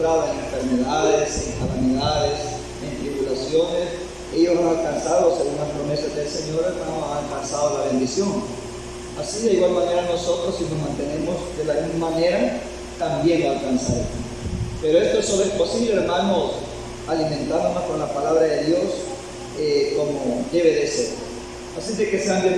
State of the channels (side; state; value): both; identical; correlation 1.00